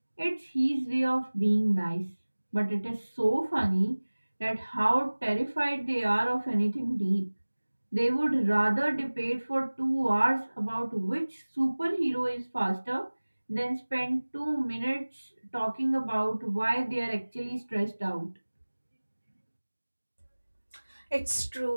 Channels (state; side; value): inverted; both; correlation -1.00